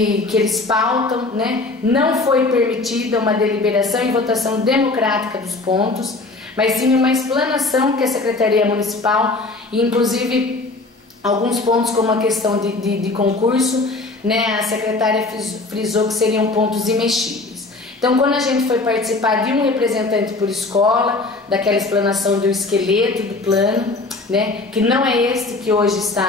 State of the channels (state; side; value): quieter; right; 3.3 dB